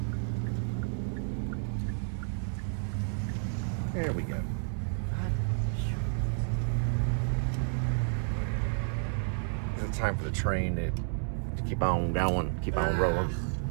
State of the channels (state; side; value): silent; left; 57 dB below the other